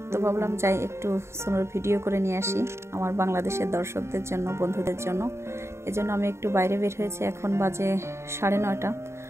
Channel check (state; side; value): late; left; 0.13 ms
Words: তো ভাবলাম যাই একটু স্নোর ভিডিও করে নিয়ে আসি আমার বাংলাদেশের দর্শকদের জন্য, বন্ধুদের জন্য। এজন্য আমি একটু বাইরে বের হয়েছি। এখন বাজে 9:30।